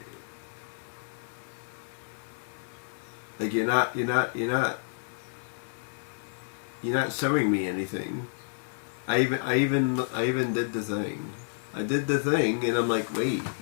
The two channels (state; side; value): silent; right; digital silence